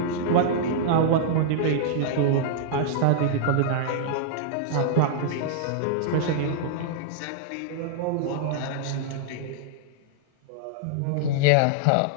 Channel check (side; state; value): both; different; correlation -0.01